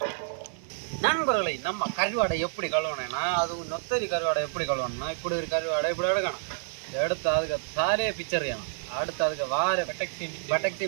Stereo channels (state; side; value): silent; left; digital silence